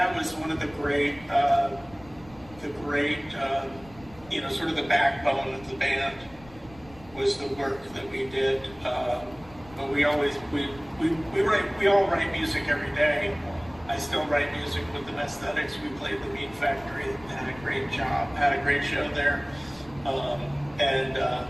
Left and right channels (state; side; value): noise; left; rumble, 22 dB below the sound